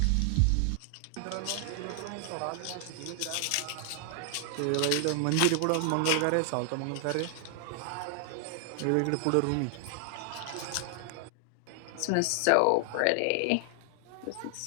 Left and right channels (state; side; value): different; both; correlation 0.00